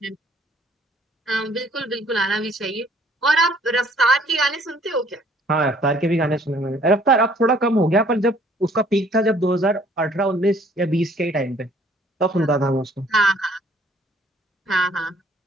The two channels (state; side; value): normal; both; correlation 0.60